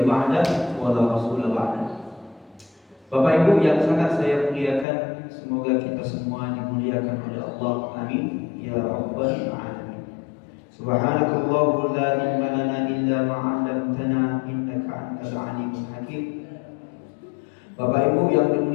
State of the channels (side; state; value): right; drops out; at 4.9 s